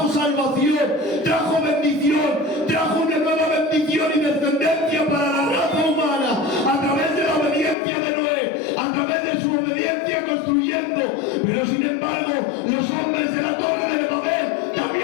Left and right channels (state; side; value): drops out; right; at 7.8 s